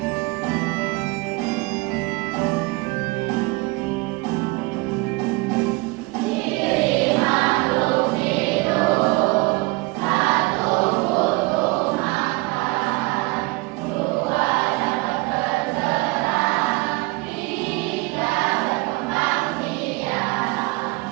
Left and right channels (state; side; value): quieter; left; 24.6 dB